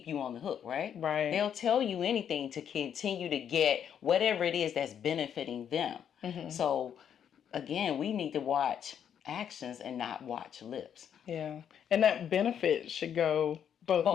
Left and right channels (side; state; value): right; quieter; 8.7 dB